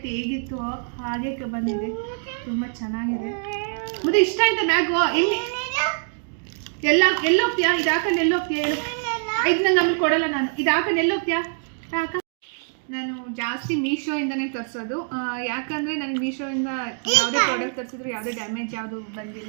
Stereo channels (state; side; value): silent; left; 62 dB below the other